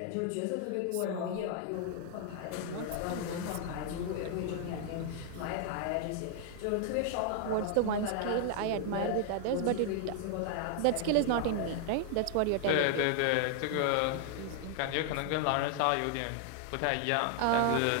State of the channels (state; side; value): different; both; correlation 0.00